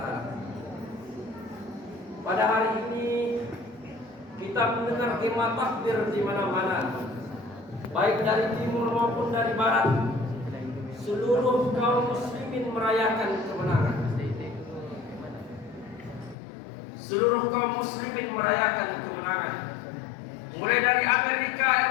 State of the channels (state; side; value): drops out; right; at 16.4 s